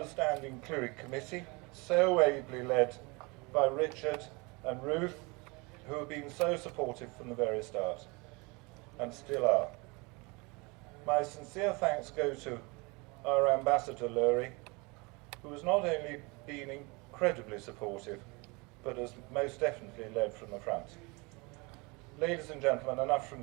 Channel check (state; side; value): quieter; left; 27.4 dB